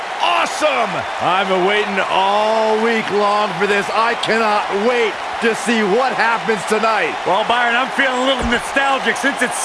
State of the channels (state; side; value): identical; both; correlation 1.00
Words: awesome. I've been waiting all week long for this. I cannot wait to see what happens tonight. Well, Byron, I'm feeling a little nostalgic. Since